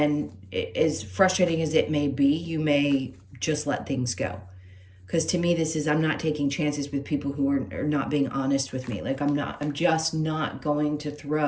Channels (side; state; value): both; identical; correlation 1.00